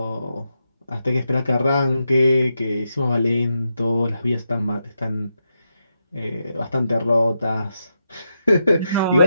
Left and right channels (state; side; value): inverted; both; correlation -0.85